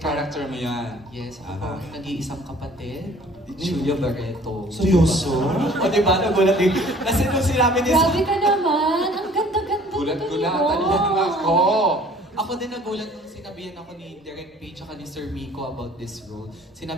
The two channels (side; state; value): both; normal; correlation 0.53